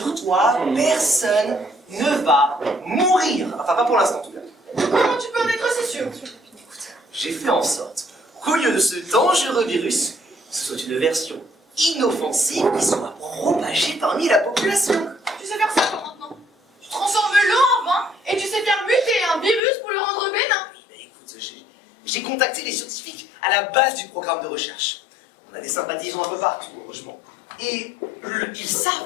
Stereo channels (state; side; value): drops out; right; at 19.6 s